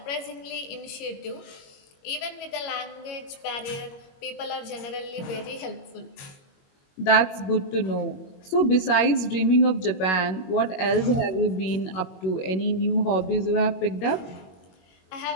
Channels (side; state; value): right; late; 21 ms